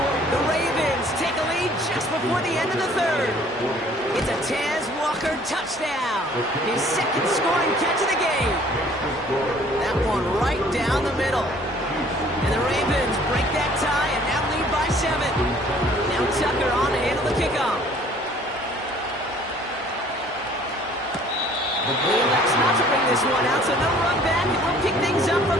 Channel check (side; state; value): both; normal; correlation 0.55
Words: The Ravens take a lead just before the end of the third. It's a Taz Walker touchdown. His second scoring catch of the game. That one right down the middle. And the Ravens break that tie and now lead by 7. Now Tucker on to handle the kickoff. He elects not to bring this one out, so no run back, and we'll pick things up from